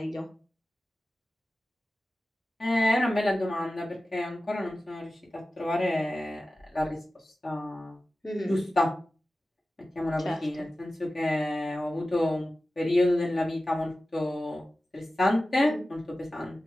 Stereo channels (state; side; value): normal; both; correlation 0.95